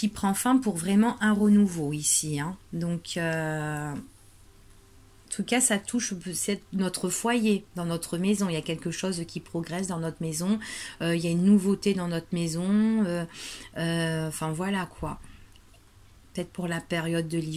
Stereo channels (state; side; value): identical; both; correlation 1.00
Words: prend fin pour vraiment un renouveau ici. Hein. Donc, en tout cas, ça touche notre foyer, dans notre maison. Il y a quelque chose qui progresse dans notre maison. Il y a une nouveauté dans notre maison. Enfin, voilà quoi. Peut-être pour la période de